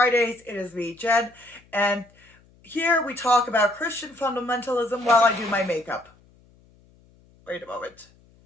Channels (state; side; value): noise; left; hum, 30 dB below the sound